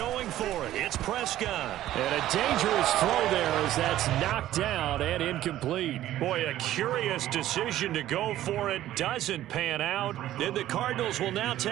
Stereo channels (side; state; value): left; quieter; 13.5 dB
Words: for it. It's Prescott. And a dangerous throw there as that's knocked down and incomplete. Boy, a curious decision to go for it. Doesn't pan out. And the Cardinals will now